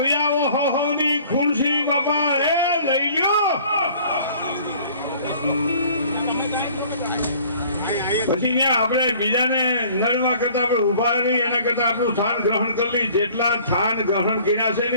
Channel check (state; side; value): inverted; both; correlation -0.52